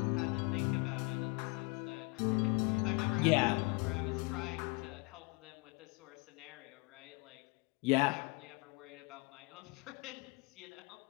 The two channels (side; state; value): right; quieter; 28.5 dB